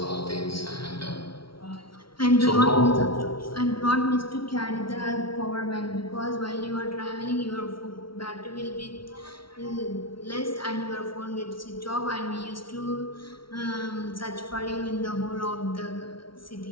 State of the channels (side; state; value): right; late; 0.74 ms